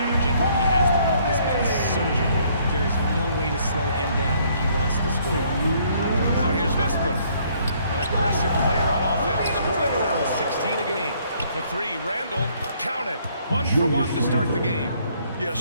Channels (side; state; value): both; inverted; correlation -0.65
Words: when he has the ball. This man is surgical. There is no way to slow him down when he wants to score. Now here's Westbrook. An aggressive player on offense, scoring around 16 a game. For 3, Randall. Count it. 1 for 1 to start the game. Yeah, a